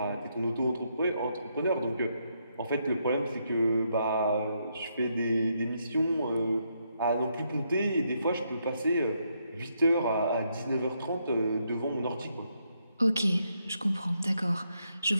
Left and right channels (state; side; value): inverted; both; correlation -0.77